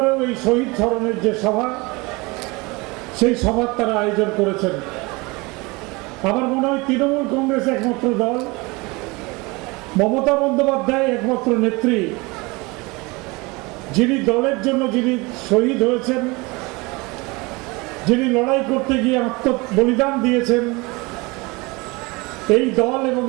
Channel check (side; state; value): left; quieter; 25.1 dB